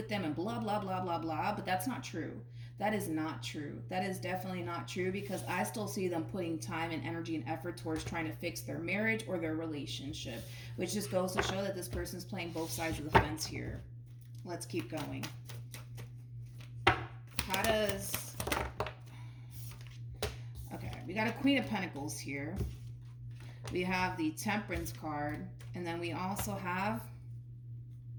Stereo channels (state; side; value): identical; both; correlation 1.00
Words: them and blah, blah, blah, blah, blah. But that's not true. That is not true. That is definitely not true, because I still see them putting time and energy and effort towards trying to fix their marriage or their relationship, which just goes to show that this person's playing both sides of the fence here. Let's keep going. How does... Okay, we got a Queen of Pentacles here. We have the Temperance card, and then we also have